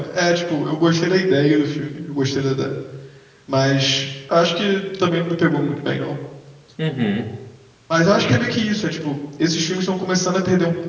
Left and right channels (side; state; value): both; identical; correlation 1.00